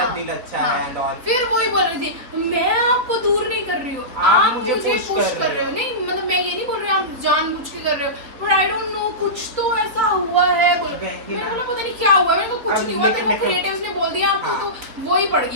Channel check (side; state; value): left; late; 4.1 ms